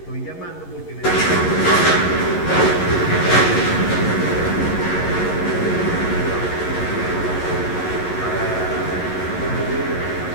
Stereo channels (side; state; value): right; late; 11 ms